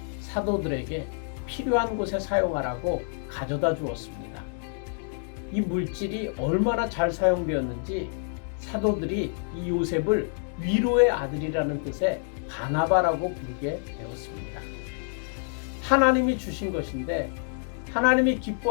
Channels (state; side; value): silent; right; 60 dB below the other